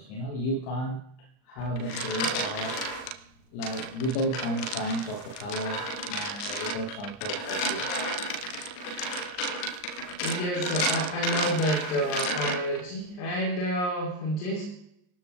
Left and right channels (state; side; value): late; right; 39 ms